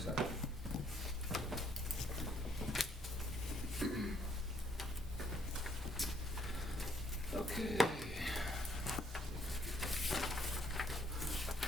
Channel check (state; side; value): normal; both; correlation 0.67